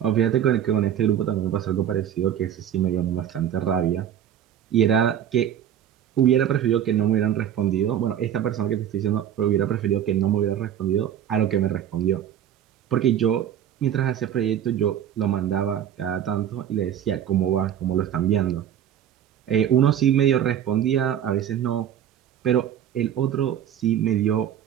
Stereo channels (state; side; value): quieter; left; 10.0 dB